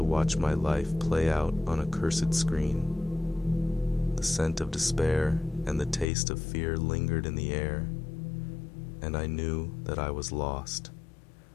watch my life play out on a cursed screen. The scent of despair and the taste of fear lingered in the air, and I knew that I was lost,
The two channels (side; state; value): right; drops out; at 6.1 s